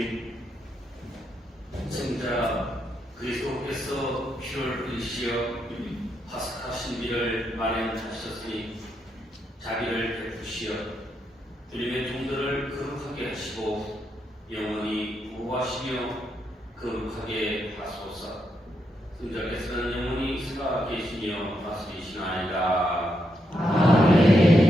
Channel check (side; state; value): both; normal; correlation 0.81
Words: 승자 그리스도께서 피를 흘리시어 파스카 신비를 마련하셨으니 자비를 베푸시어 주님의 종들을 거룩하게 하시고 영원히 보호하시며 거룩하게 하소서. 승자께서는 영원히 살아계시며 다스리시나이다.